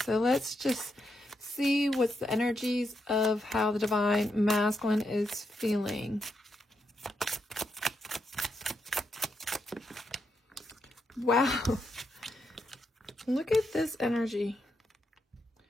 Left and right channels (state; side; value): normal; both; correlation 0.82